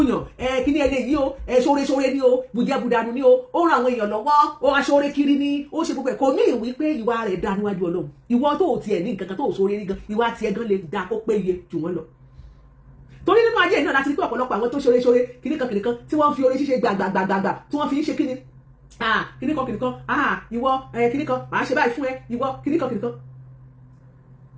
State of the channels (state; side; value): identical; both; correlation 1.00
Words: yàn kíní ẹni yìí o ṣoore ni o bùjẹ́bùdànù ni o ó ran àwọn èèyàn lọ́wọ́ ó aṣoore kiri ni ó ṣe gbogbo ẹ̀ kò ní ìwé pé ìwà rẹ̀ dá níwájú Ọlọ́run ìwọ tó tiẹ̀ ní nǹkan kan tó ṣoore ní gan ìwà tiẹ̀ gan lè dá kó péye jù wọ́n lọ torí nínú ayé náà láti rí pé ọ̀pọ̀lọpọ̀ àwọn tó ṣoore kíníkan tí wọ́n fi oore ṣíṣe gbàgbàgbàgbà tí wọ́n fi ń ṣe kíni kíníkan ìwọ kíníkan màá ṣe báyìí fún ẹ ìwọ kíníkan